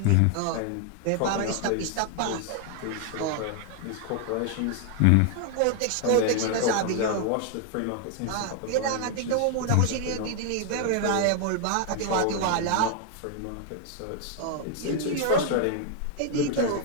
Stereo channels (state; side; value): different; both; correlation 0.00